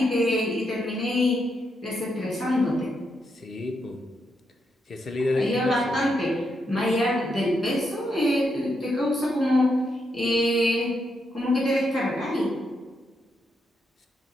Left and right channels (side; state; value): both; normal; correlation 0.81